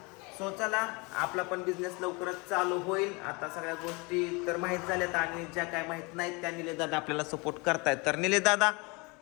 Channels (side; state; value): right; quieter; 28.1 dB